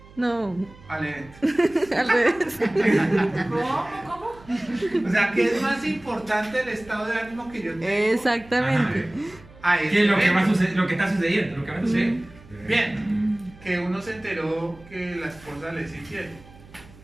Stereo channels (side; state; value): right; noise; hum, 22 dB below the sound